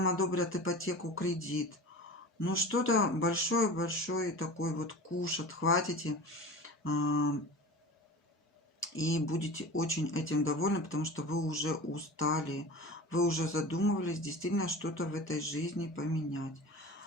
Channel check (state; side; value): normal; both; correlation 0.35